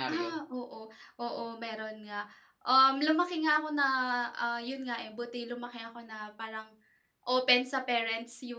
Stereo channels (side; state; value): both; identical; correlation 1.00